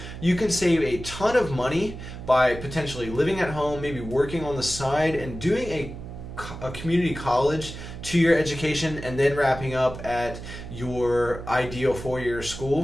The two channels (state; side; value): noise; right; hum, 11 dB below the sound